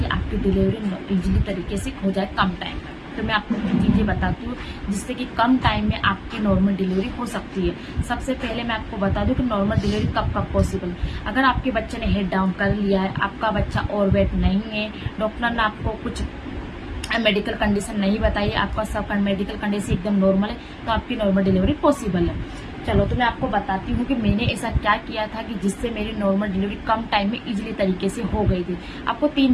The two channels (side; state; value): both; identical; correlation 1.00